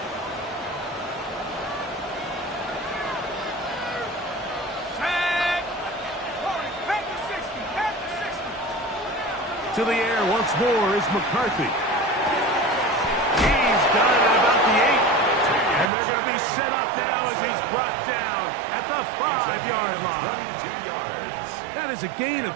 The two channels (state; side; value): drops out; left; at 15.9 s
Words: To the air once more is McCarthy. He's got it at about the 8. And they're going to be set up now as he's brought down at the 5-yard line. 22 yards. That is a gain of